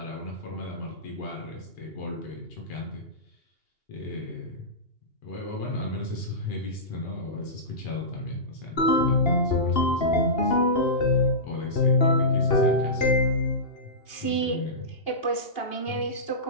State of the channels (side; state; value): right; late; 2.8 ms